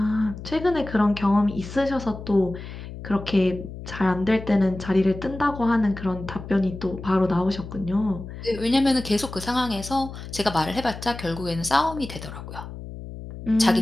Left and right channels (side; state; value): left; noise; hum, 11 dB below the sound